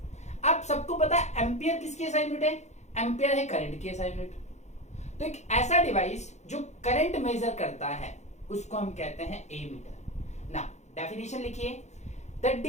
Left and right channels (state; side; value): late; right; 0.33 ms